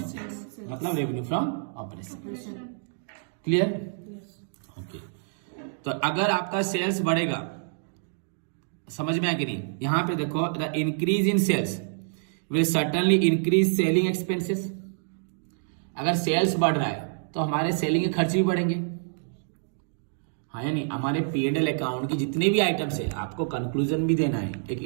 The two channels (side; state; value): left; silent; digital silence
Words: सेल्स, मतलब revenue from operation. Clear? Okay, तो अगर आपका सेल्स बढ़ेगा, समझ में आया कि नहीं? यहां पे देखो, the increase in sales will certainly increase selling expenses. अगर सेल्स बढ़ रहा है तो हमारे सेलिंग के खर्च भी बढ़ेंगे, हाँ या नहीं? हमारे P&L अकाउंट की जितने भी आइटम्स है, आपको कंक्लूजन भी देना है, एक